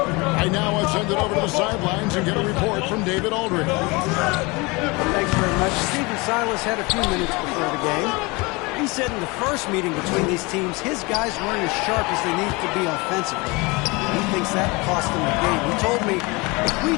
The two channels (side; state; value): right; quieter; 25.9 dB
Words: I now will send it over to the sidelines and get a report from David Aldridge. Thanks very much. Stephen Silas had a few minutes before the game. He said in the first meeting between these teams, his guys weren't as sharp as they need to be offensively. He thinks that cost them the game. He told me, if we